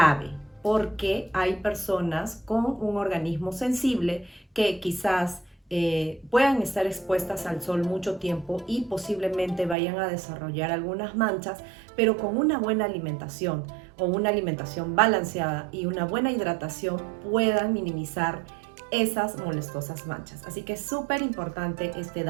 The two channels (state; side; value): drops out; left; at 9.8 s